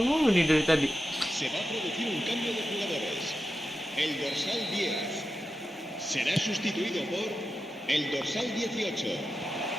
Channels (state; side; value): normal; both; correlation 0.90